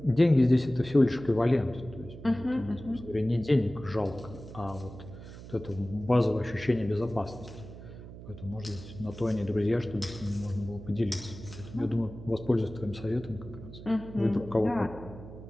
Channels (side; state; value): right; noise; hum, 14 dB below the sound